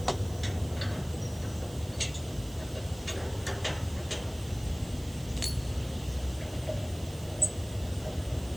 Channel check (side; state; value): right; noise; hiss, 18 dB below the sound